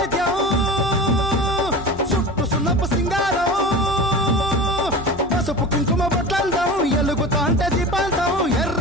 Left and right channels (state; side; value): noise; left; hum, 18 dB below the sound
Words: చుట్టు సున్నపు సింగారం పసుపు కుంకుమ బొట్లందం ఎలుగుతాంటే దీపాంతం